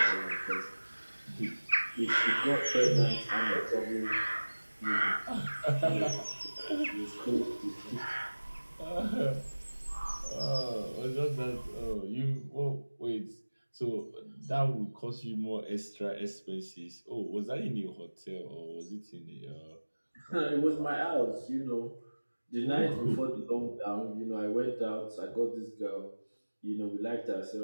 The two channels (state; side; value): inverted; both; correlation -1.00